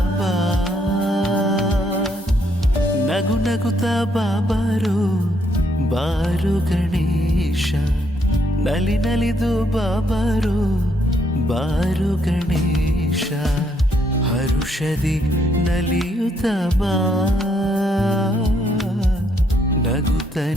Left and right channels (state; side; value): normal; both; correlation 0.72